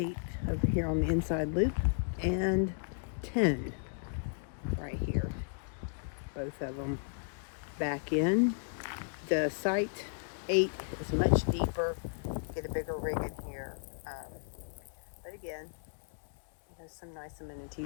over here on the inside loop, and 10 right here. Both of them back in. The site 8 is much deeper. Get a bigger rig in here. But again, it has some nice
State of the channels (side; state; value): right; silent; digital silence